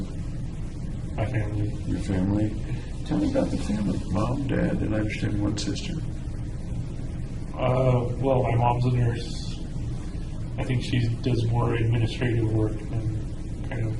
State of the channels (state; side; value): identical; both; correlation 1.00